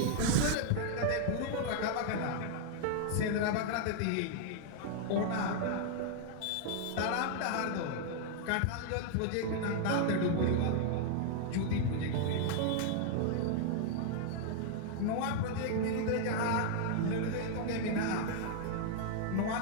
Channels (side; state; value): both; different; correlation 0.00